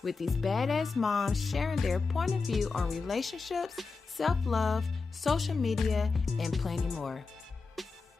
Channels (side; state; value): right; quieter; 4.4 dB